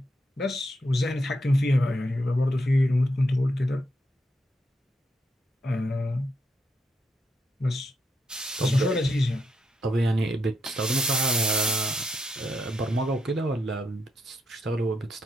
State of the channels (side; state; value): both; normal; correlation 0.81